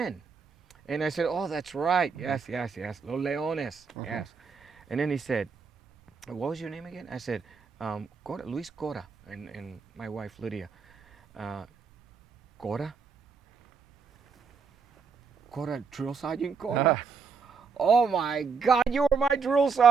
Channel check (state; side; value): quieter; left; 5.5 dB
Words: And I said, "Oh, that's right. Yes, yes, yes. Los Leones. Yes." And then he said, "What was your name again?" I said, Cora, Luis Cora, and my wife Lydia. Cora? Cora, Drill Sergeant Cora? Oh my God, you were my drill